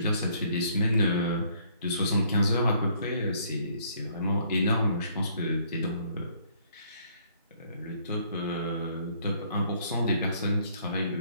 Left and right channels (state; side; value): inverted; both; correlation -0.64